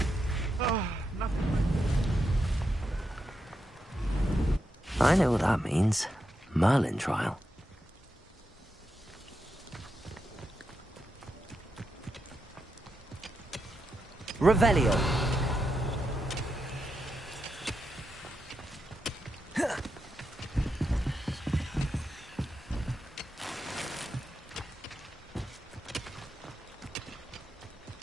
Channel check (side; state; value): both; normal; correlation 0.86